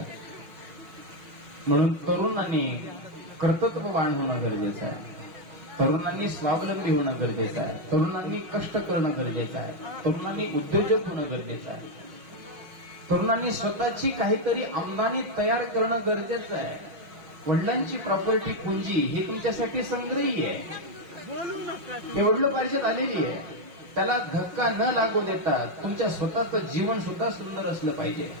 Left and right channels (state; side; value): late; left; 6.3 ms